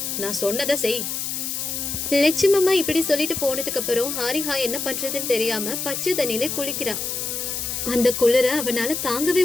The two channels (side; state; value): left; noise; hiss, 3 dB below the sound